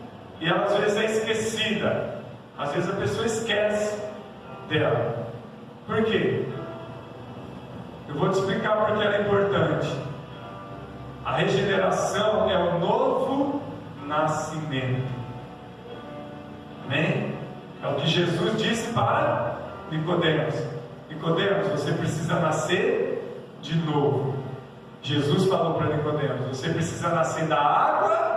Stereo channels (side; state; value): both; identical; correlation 1.00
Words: E ela às vezes é esquecida. Às vezes a pessoa esquece dela. Por quê? Eu vou te explicar porque ela é importante. A regeneração é o novo nascimento. Amém? É o que Jesus disse para Nicodemos. Nicodemos, você precisa nascer de novo. Jesus falou para Nicodemos: você precisa nascer da